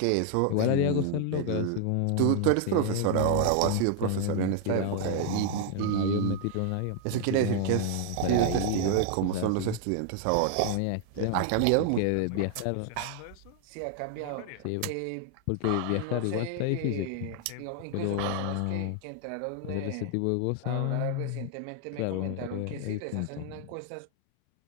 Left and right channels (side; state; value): both; different; correlation 0.00